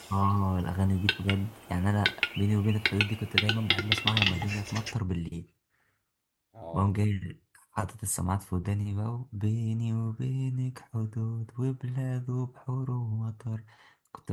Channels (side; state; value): both; identical; correlation 1.00